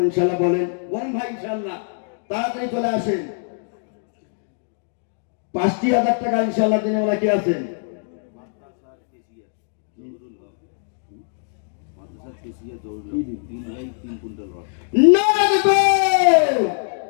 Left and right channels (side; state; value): right; silent; digital silence